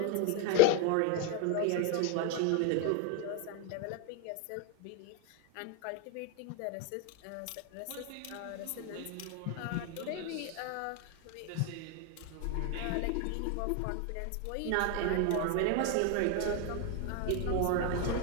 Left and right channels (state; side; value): different; both; correlation 0.01